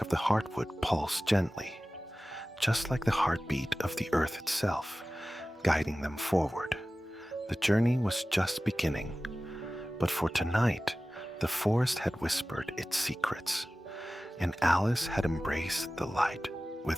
of the heartwood pulsed gently, just like the heartbeat of the earth itself, guiding them forward. The journey was just beginning, but for tonight, the forest had whispered its secrets, and Alice had embraced the light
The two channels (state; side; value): normal; both; correlation 0.96